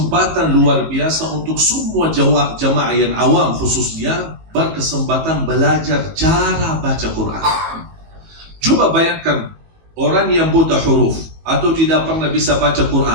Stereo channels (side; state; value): left; late; 19 ms